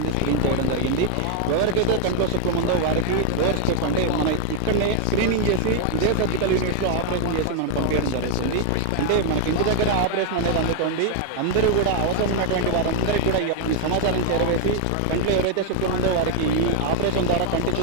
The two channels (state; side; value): different; both; correlation 0.00